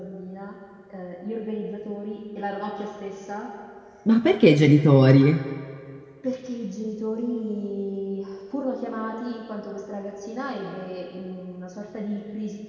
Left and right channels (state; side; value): identical; both; correlation 1.00